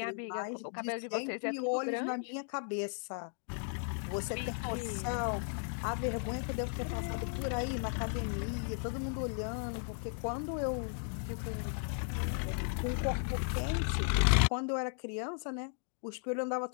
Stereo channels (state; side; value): silent; right; 54 dB below the other